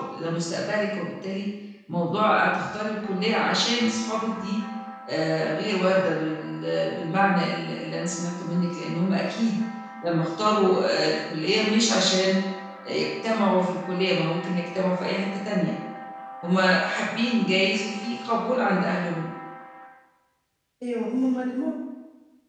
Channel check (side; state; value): both; identical; correlation 1.00